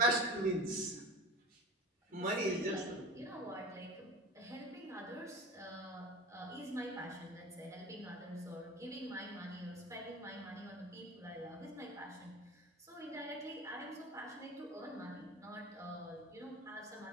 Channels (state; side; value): normal; both; correlation 0.33